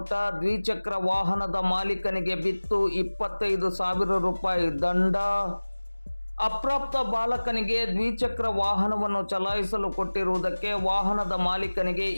ದ್ವಿಚಕ್ರ ವಾಹನದ ಮಾಲೀಕನಿಗೆ ಬಿತ್ತು 25,000 ರೂಪಾಯಿ ದಂಡ. ಅಪ್ರಾಪ್ತ ಬಾಲಕನಿಗೆ ದ್ವಿಚಕ್ರ ವಾಹನವನ್ನು ಚಲಾಯಿಸಲು ಕೊಟ್ಟಿರುವುದಕ್ಕೆ ವಾಹನದ ಮಾಲೀಕನಿಗೆ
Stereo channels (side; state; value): both; inverted; correlation -1.00